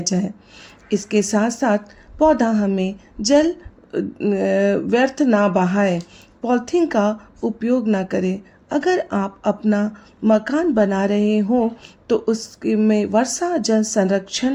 जाए। इसके साथ साथ पौधा हमें जल व्यर्थ ना बहाए, पॉलीथीन का उपयोग ना करें। अगर आप अपना मकान बना रहे हो तो उसमें वर्षा जल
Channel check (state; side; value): identical; both; correlation 1.00